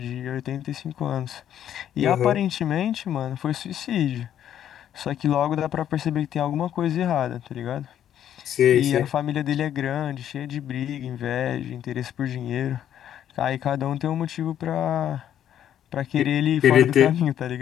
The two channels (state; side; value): quieter; right; 10.4 dB